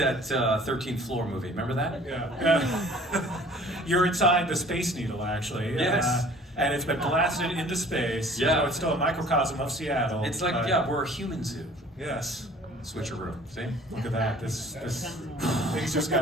13th Floor movie. Remember that? Yeah. You're inside the Space Needle, actually. Yes. And it's been blasted into space. Yeah. So it's still a microcosm of Seattle. It's like, we're a human zoo. Yes. Switcheroo. See? Look at that. This things just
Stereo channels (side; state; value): both; normal; correlation 0.51